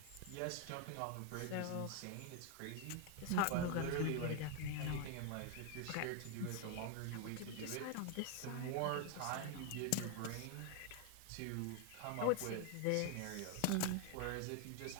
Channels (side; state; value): both; different; correlation 0.01